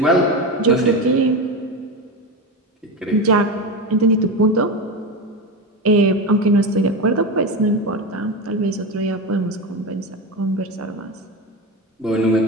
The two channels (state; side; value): normal; both; correlation 0.20